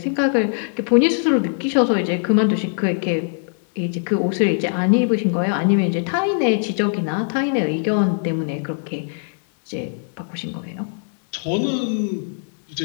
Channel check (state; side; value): silent; right; digital silence